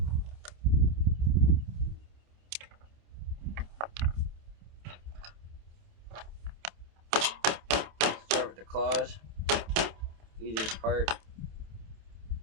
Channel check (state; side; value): late; left; 27 ms